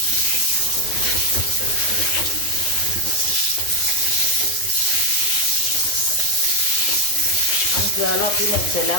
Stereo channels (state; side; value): late; right; 9.7 ms